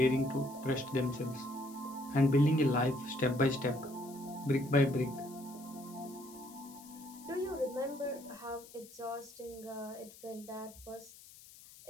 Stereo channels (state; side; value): noise; left; hiss, 20 dB below the sound